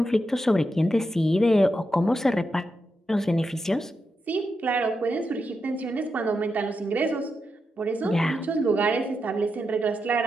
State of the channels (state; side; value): normal; both; correlation 0.86